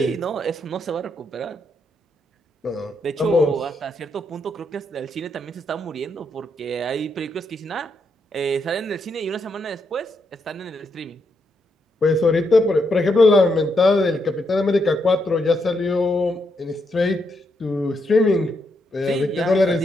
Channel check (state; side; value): normal; both; correlation 0.79